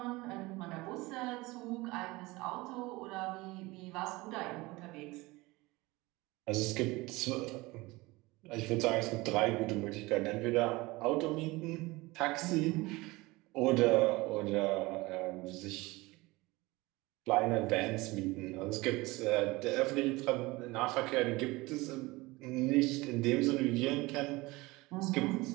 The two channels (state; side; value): quieter; left; 21.8 dB